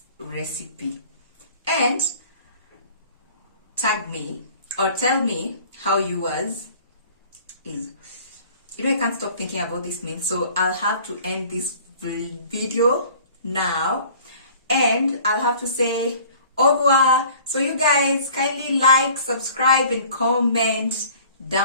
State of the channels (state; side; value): inverted; both; correlation -0.49